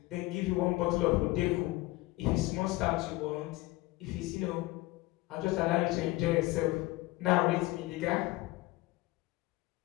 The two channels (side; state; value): right; quieter; 20.0 dB